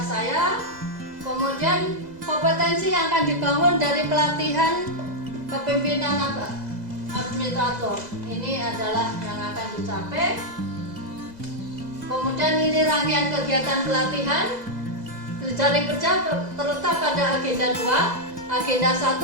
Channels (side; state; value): left; late; 2.0 ms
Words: saya. Kemudian kompetensi yang akan dibangun dari pelatihan kepemimpinan administrator. Ini adalah yang akan dicapai. Kemudian ini rangkaian kegiatan pelatihan. Jejaring kerja terletak pada agenda 2. Agenda 1